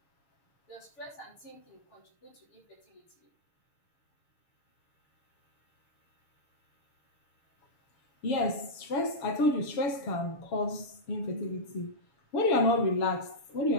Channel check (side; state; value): right; late; 7.1 ms